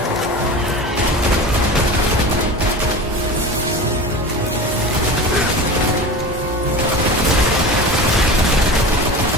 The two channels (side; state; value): both; normal; correlation 0.31